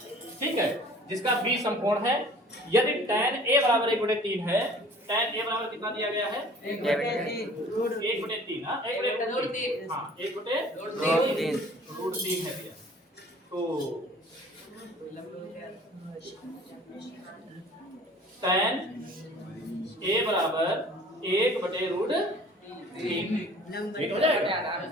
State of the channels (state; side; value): normal; both; correlation 0.49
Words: ठीक है, जिसका B समकोण है। यदि tan A बराबर 1/3 है, tan A बराबर कितना दिया गया है? 1/3 हाँ 1/3 हाँ 1/√3 है भैया। तो tan A बराबर 1/√3 ठीक हो जाएगा।